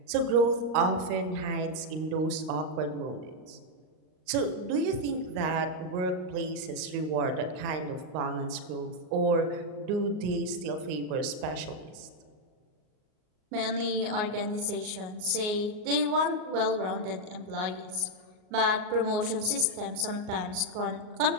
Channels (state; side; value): late; left; 38 ms